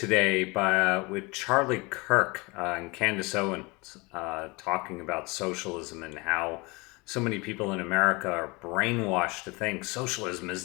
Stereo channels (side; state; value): right; quieter; 26.1 dB